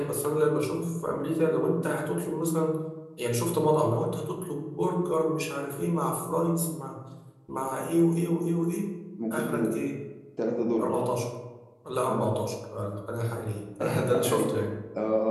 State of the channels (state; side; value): identical; both; correlation 1.00